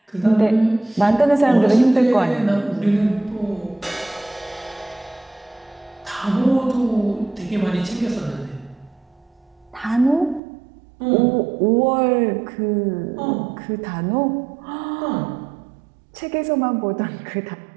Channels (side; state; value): left; drops out; at 10.4 s